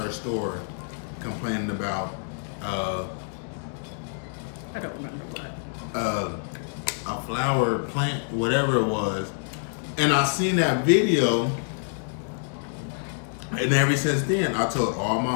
store complaining about I don't remember what. A flower plant, whatever it was. And I seen that video, and ever since then I told all my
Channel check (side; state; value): right; silent; digital silence